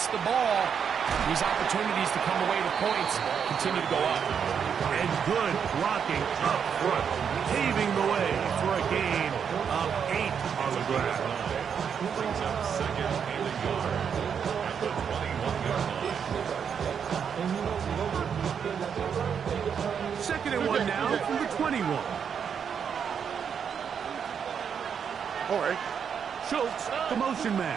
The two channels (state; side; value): quieter; left; 7.3 dB